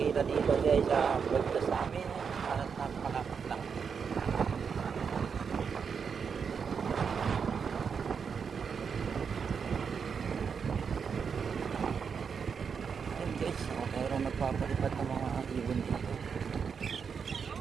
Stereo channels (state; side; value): quieter; left; 6.3 dB